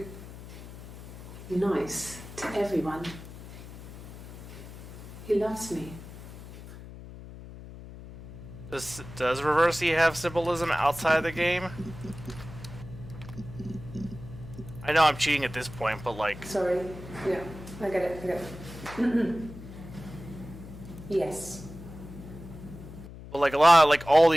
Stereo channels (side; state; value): left; noise; hum, 14 dB below the sound